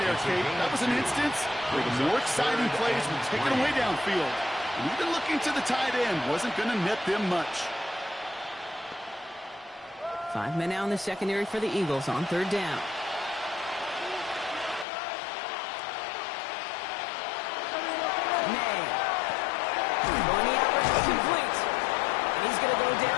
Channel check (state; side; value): drops out; right; at 14.9 s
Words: there, Kate. That was an instance where the more exciting plays were taken away downfield. And even looking to the tight end wasn't going to net them much. 5 men now in the secondary for the Eagles on 3rd down. May. Going the out route, complete. And he's going to go